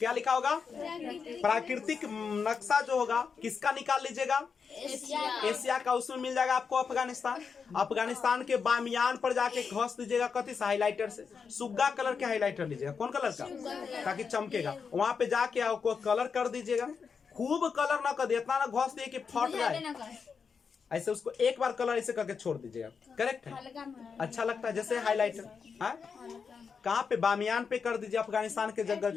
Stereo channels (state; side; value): quieter; right; 5.9 dB